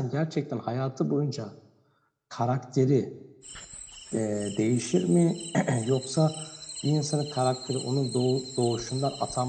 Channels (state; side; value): identical; both; correlation 1.00